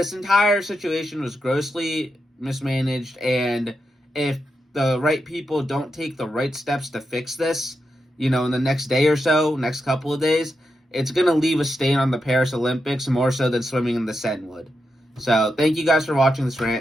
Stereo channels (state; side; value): normal; both; correlation 0.86